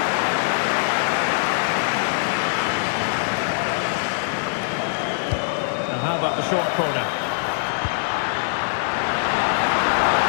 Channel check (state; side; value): silent; right; digital silence